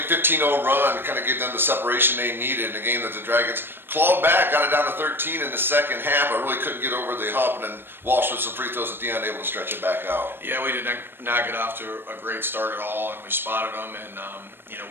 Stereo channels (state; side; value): late; left; 0.10 ms